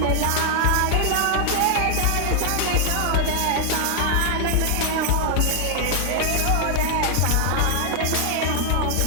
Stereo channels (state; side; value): different; both; correlation 0.00